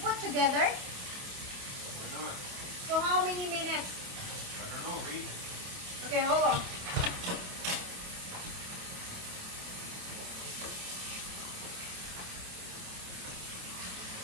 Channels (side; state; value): left; late; 28 ms